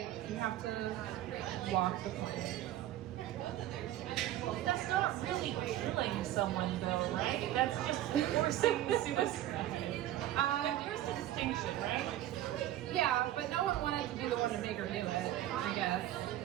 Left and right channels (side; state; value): left; quieter; 13.5 dB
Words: you have to walk the plank. That's not really killing someone, though, right? That's just forcing suicide. There's a distinction, right? Yeah, but no one wanted to be the one to make her do it, I guess.